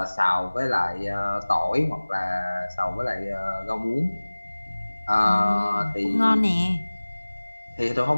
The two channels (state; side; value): inverted; both; correlation -1.00